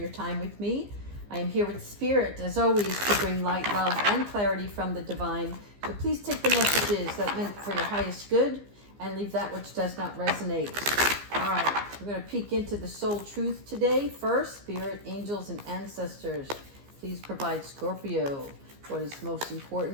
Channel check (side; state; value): left; late; 15 ms